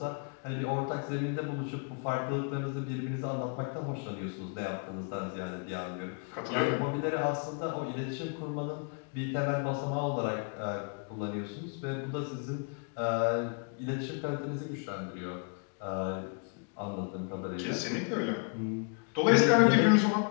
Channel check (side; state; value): right; quieter; 39.2 dB